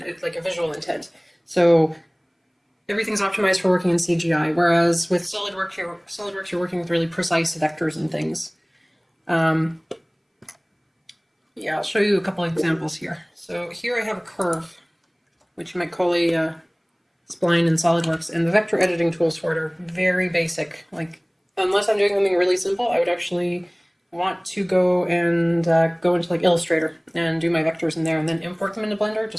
like a visual intent. So everything's optimized for working in CGI, whereas with Solidworks, you're working with really precise vectors and things. Yeah, I'll show you a couple of examples here. So here I have a curve, which you might call a spline in SolidWorks, and the vector editing tools for it are very basic. Like, unless I'm doing something really simple, I would actually want to go and go into like Illustrator and do my vectors in there and then import them into Blender,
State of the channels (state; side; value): identical; both; correlation 1.00